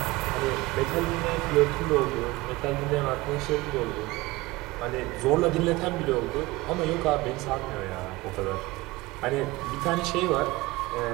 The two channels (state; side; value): quieter; left; 20.4 dB